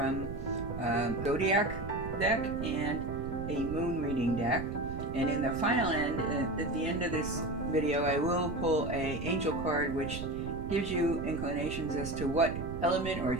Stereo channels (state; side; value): noise; right; rumble, 7 dB below the sound